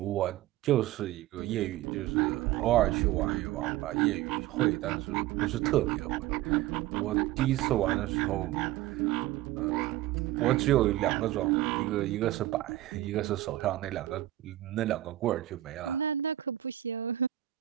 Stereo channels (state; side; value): quieter; left; 14.6 dB